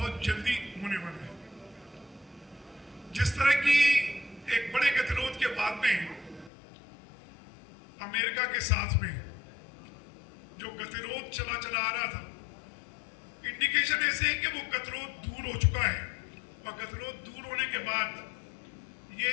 जल्दी होने वाला है। जिस तरह की एक बड़े गतिरोध के बाद में अमेरिका के साथ में जो गतिरोध चला आ रहा था, इंडिकेशन ऐसे है कि वो गतिरोध दूर हो चुका है और गतिरोध दूर होने के बाद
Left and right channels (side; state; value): right; drops out; at 6.5 s